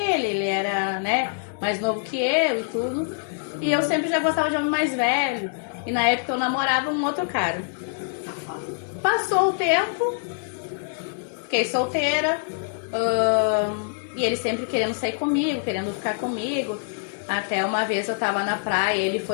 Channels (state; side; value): silent; right; digital silence